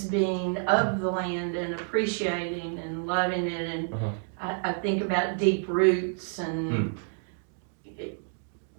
of the land and appreciating and loving it. And I think about deep roots and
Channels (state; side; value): silent; left; 59 dB below the other